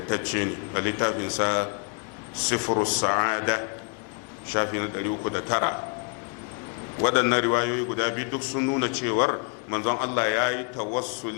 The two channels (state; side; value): quieter; right; 37.5 dB